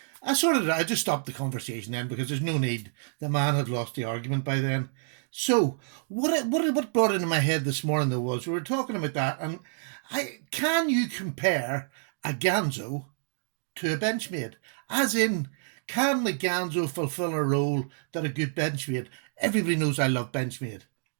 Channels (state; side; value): silent; left; digital silence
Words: I just stopped the conversation then because there's no need. The man had lost the argument by then. So what brought into my head this morning, though, was we were talking about that, and can you compare a Ganzo to a Benchmade? As in, can the Ganzo fulfill a role that a good Benchmade? Everybody knows I love Benchmade.